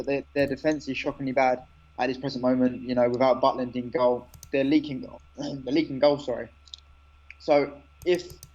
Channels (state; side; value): identical; both; correlation 1.00